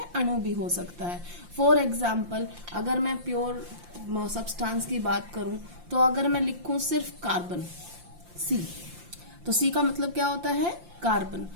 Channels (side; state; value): left; late; 5.7 ms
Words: अणु भी हो सकता है। फॉर एग्जाम्पल अगर मैं प्योर सब्सटेंस की बात करूं तो अगर मैं लिखूं सिर्फ कार्बन सी, तो सी का मतलब क्या होता है? कार्बन।